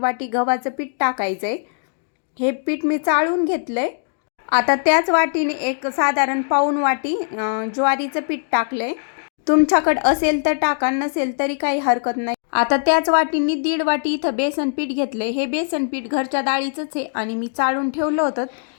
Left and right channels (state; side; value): silent; right; digital silence